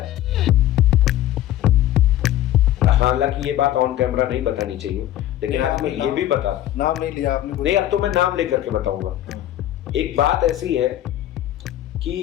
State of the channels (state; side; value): quieter; right; 13.1 dB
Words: हालांकि ये बात ऑन कैमरा नहीं बतानी चाहिए, लेकिन आज मैं ये भी बता, नाम नहीं लिया आपने? नहीं, अब तो मैं नाम लेकर के बताऊंगा। एक बात ऐसी है